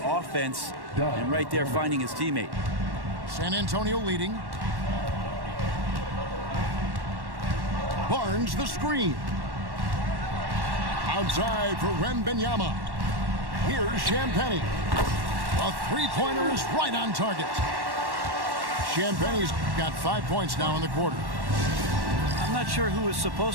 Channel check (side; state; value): left; late; 1.1 ms